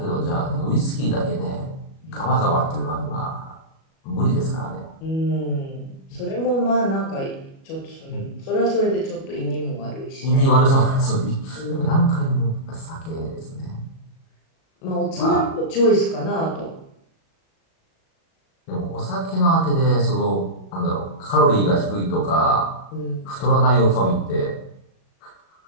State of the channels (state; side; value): late; right; 37 ms